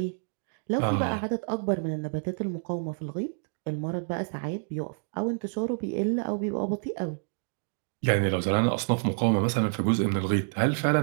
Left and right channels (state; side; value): silent; left; digital silence